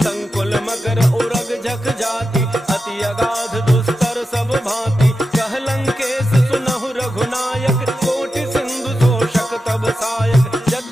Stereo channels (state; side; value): normal; both; correlation 0.90